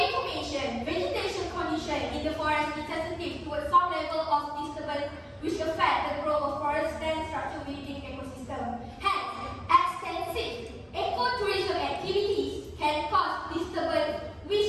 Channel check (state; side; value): identical; both; correlation 1.00